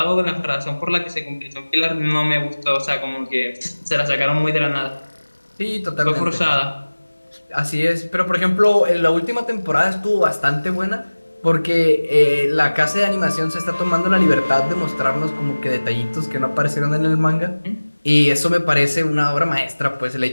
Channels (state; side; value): inverted; both; correlation -1.00